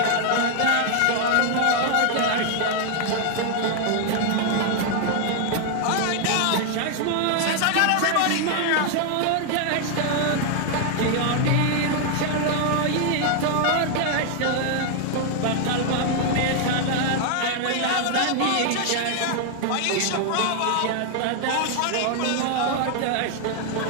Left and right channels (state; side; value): different; both; correlation 0.00